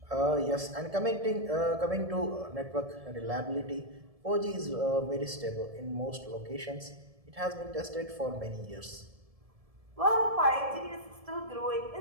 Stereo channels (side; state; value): left; late; 1.7 ms